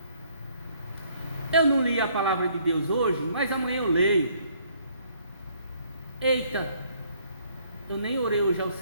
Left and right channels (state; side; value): inverted; both; correlation -0.64